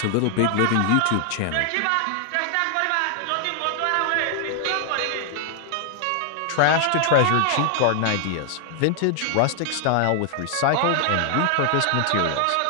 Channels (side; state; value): both; different; correlation 0.00